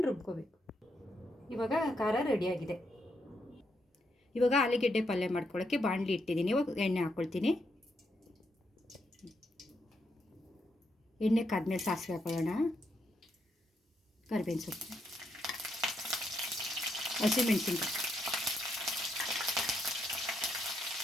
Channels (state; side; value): normal; both; correlation 0.79